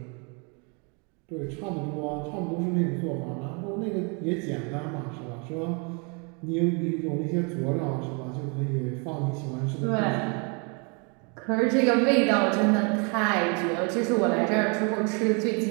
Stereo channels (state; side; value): quieter; left; 34.1 dB